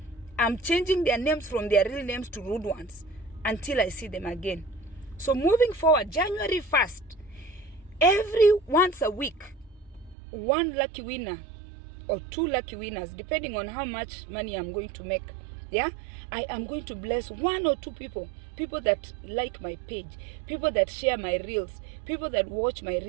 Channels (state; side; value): drops out; left; at 10.2 s